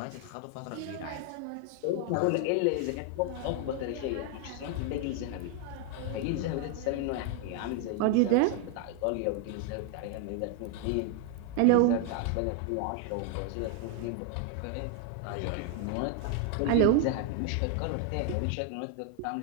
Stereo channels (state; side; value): different; both; correlation 0.00